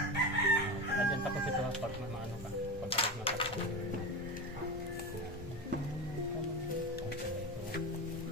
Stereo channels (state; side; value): normal; both; correlation 0.23